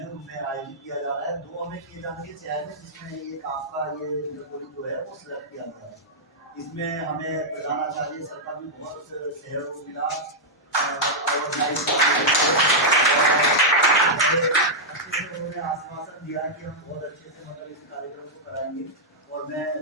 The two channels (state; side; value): normal; both; correlation -0.07